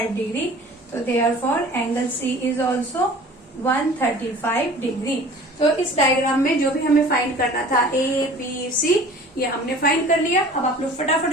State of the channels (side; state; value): both; normal; correlation 0.45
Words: डिग्री। तो therefore angle C is also 135 degree. तो इस डायग्राम में जो भी हमें फाइंड करना था, ए बी सी, ये हमने फाइंड कर लिया। अब आप लोग फटाफट